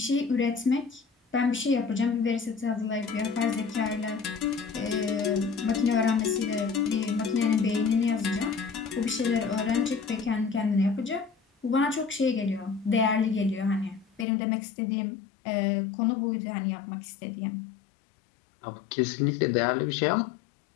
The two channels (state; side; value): drops out; right; at 14.2 s